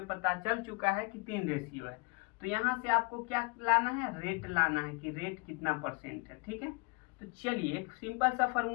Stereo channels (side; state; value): right; quieter; 28.9 dB